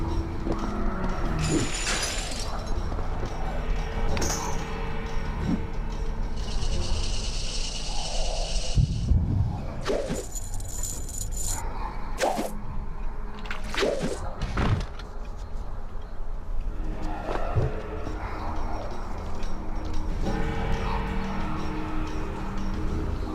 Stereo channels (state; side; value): identical; both; correlation 1.00